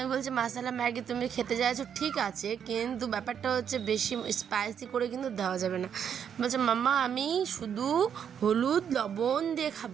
বলছি মাসালা ম্যাগি তুমি খেতে চাইছো ঠিক আছে, কিন্তু ব্যাপারটা হচ্ছে বেশি স্পাইসি করে কিন্তু দেওয়া যাবে না। বলছে মাম্মা আমি শুধু হলুদ লবণ দিয়ে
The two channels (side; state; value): left; quieter; 8.1 dB